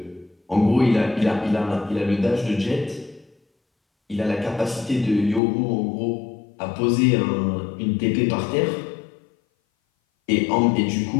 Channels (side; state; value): right; drops out; at 5.4 s